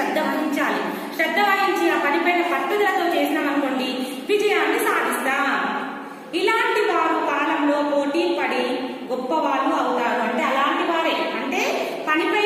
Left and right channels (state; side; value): identical; both; correlation 1.00